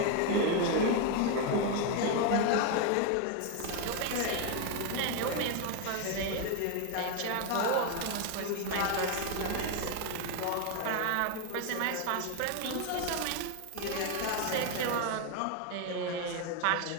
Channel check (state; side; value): different; both; correlation 0.01